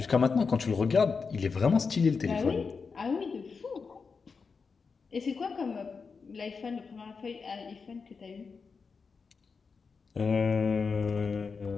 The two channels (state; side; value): quieter; right; 5.1 dB